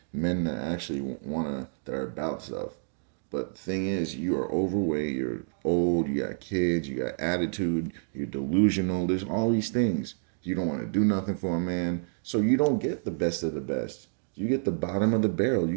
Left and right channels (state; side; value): silent; left; digital silence